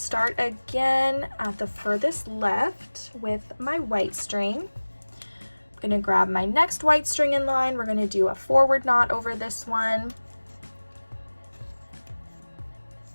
again at the furthest left with my white string. I'm gonna grab my next white string in line. We're gonna do a forward knot over this one.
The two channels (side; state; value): both; inverted; correlation -1.00